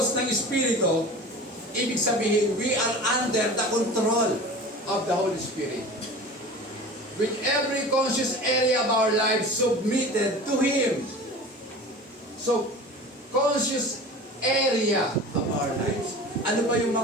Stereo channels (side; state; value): both; normal; correlation 0.37